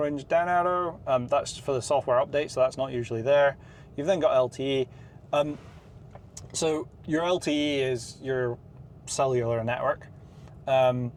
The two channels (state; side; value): identical; both; correlation 1.00